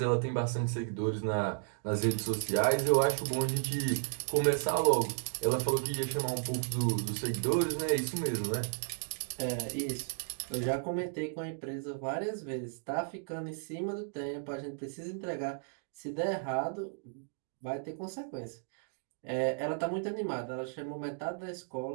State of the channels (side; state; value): left; silent; digital silence